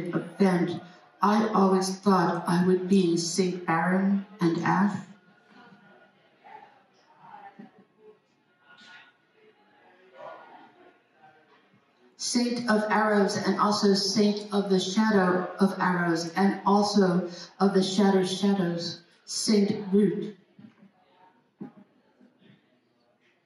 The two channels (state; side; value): identical; both; correlation 1.00